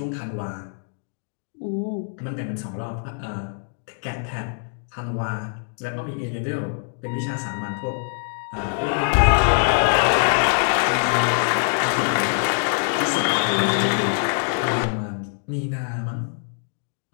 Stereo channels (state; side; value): silent; right; digital silence